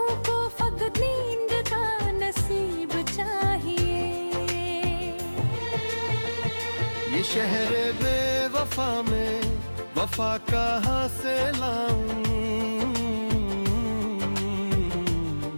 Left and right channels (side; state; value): both; inverted; correlation -1.00